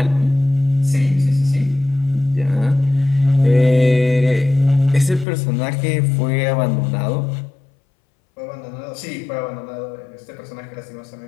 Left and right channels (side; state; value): right; drops out; at 5.2 s